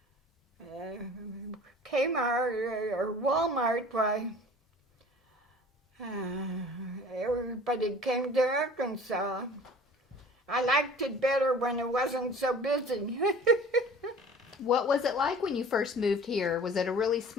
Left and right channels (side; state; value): both; normal; correlation 0.45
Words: Kmart or Walmart, why, everybody came to Arkansas. I liked it better when it wasn't so busy. what was it like when you first moved here? Was it a really